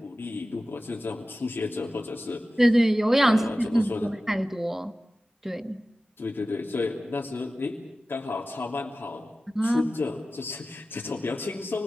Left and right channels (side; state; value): both; normal; correlation 0.95